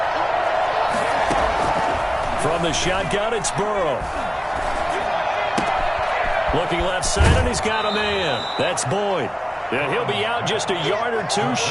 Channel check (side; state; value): both; identical; correlation 1.00